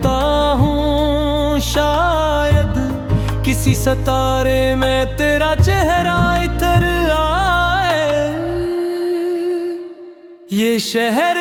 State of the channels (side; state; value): both; identical; correlation 1.00